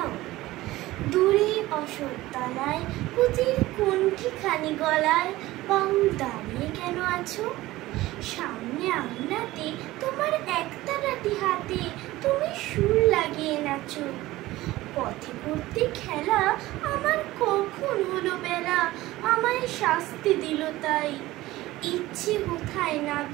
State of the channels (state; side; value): quieter; left; 17.6 dB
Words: দূরে অশোকতলায় পুঁতির কুণ্ঠিখানি গলায় বাউল দাঁড়িয়ে কেন আছো? সামনে আঙিনাতে তোমার একতারাটি হাতে তুমি সুর লাগিয়ে নাচো। পথে পড়তে খেলা আমার কখন হলো বেলা, আমায় শাস্তি দিল তাই। ইচ্ছে কোথায়